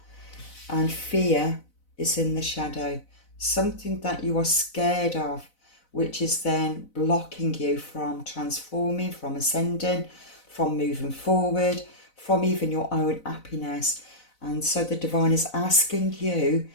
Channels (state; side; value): late; right; 4.0 ms